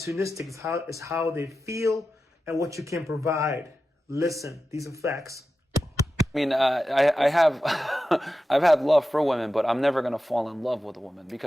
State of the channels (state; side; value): normal; both; correlation 0.92